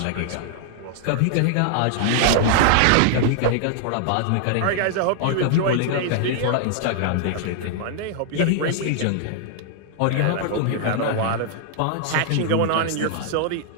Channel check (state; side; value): different; both; correlation -0.01